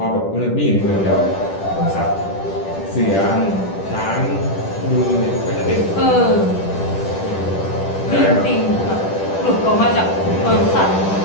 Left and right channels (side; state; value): right; late; 10 ms